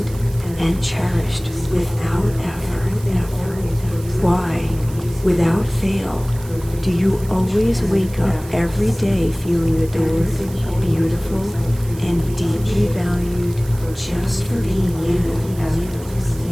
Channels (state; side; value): noise; right; hiss, 19 dB below the sound